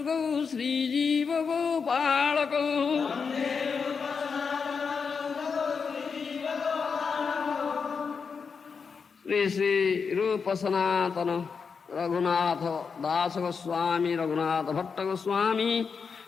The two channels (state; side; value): quieter; right; 5.6 dB